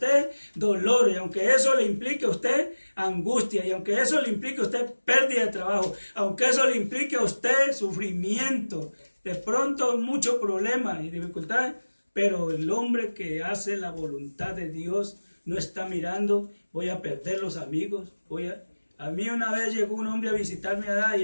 dolor, y aunque eso le implique a usted angustia, y aunque eso le implique a usted pérdida de trabajo, aunque eso le implique a usted sufrimiento, de pronto muchos problemas y dificultades, pero el hombre que hace la voluntad de Dios no está mirando: voy a perder los amigos, A mí una vez llegó un hombre a visitarme allá y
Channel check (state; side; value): inverted; both; correlation -1.00